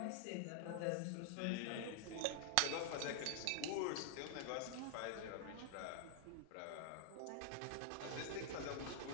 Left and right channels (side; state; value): both; different; correlation 0.00